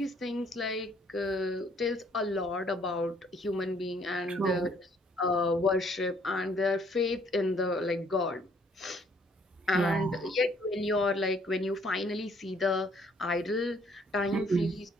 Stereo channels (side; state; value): both; normal; correlation 0.64